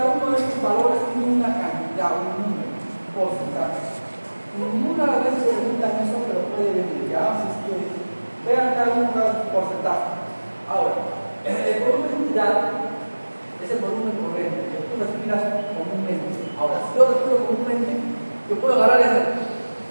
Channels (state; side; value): inverted; both; correlation -1.00